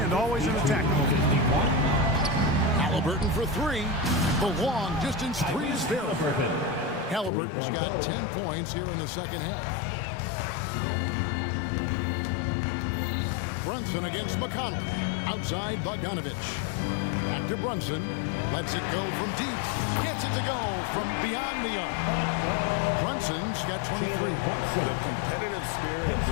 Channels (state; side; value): drops out; right; at 7.3 s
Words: always in attack mode. Halliburton for 3. The long distance 3 is there. Halliburton's got 10 points here in the second half. Brunson against McConnell. Outside Bogdanovich. Back to Brunson. Lets it go from deep. Gets it to go from beyond the arc. Brunson's got 23. The competitive spirit of